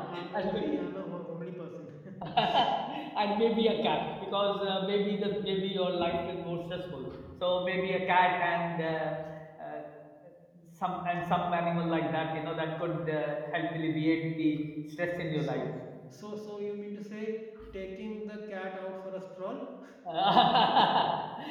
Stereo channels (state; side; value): identical; both; correlation 1.00